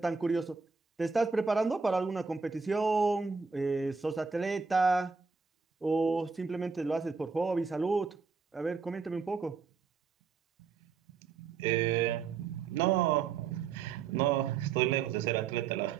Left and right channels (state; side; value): quieter; left; 5.2 dB